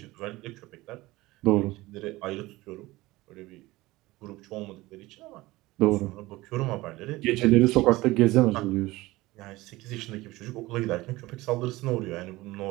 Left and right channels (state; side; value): quieter; left; 19.4 dB